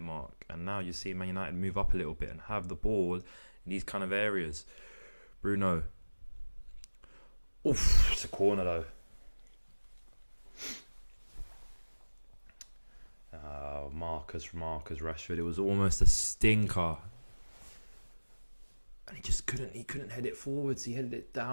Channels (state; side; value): inverted; both; correlation -1.00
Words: mark. And now you see Man United move up a little bit and have the ball in these kind of areas. Bruno. Oof, it's a corner though. Marcus Rashford. It was almost a stinker. And he couldn't head it forwards. He headed it